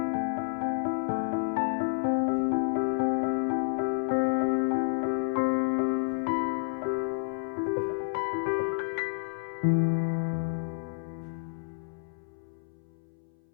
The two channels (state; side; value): silent; right; 58 dB below the other